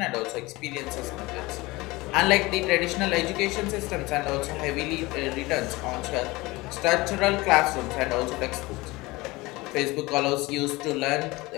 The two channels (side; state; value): right; quieter; 21.7 dB